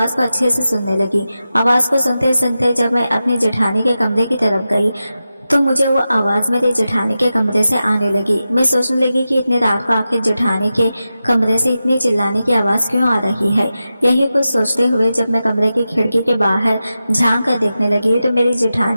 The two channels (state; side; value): inverted; both; correlation -0.92